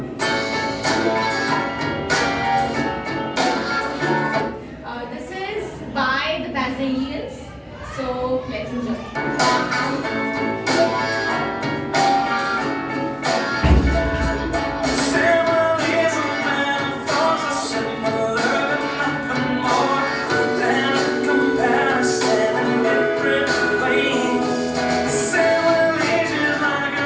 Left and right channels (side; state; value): both; identical; correlation 1.00